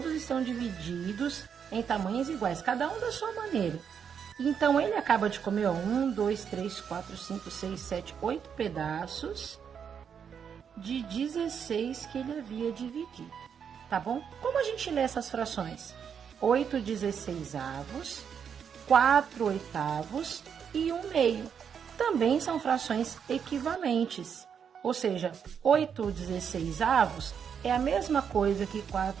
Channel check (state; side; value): quieter; left; 7.4 dB